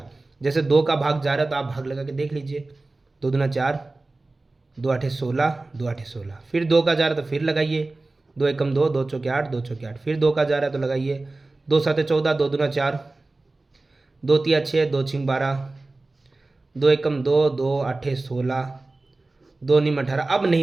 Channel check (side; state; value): left; quieter; 3.2 dB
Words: जैसे 2 का भाग जा रहा है तो आप भाग लगा के देख लीजिए, 2 दूना 4, 2 8 16, 2 8 16। फिर 2 का जा रहा है तो फिर लगाइए, 2 एकम 2, 2 चौके 8, 2 चौके 8। फिर 2 का जा रहा है तो लगाइए, 2 7 14, 2 दूना 4, 2 3 6, 2 6 12, 2 एकम 2, 2 8 16, 2 9 18। अब